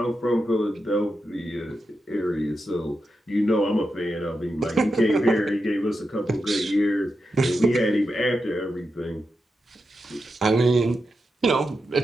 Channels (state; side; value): normal; both; correlation 0.88